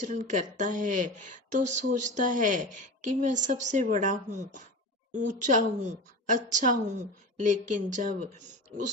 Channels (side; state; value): both; normal; correlation 0.29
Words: करता है तो सोचता है कि मैं सबसे बड़ा हूँ, ऊंचा हूँ, अच्छा हूँ। लेकिन जब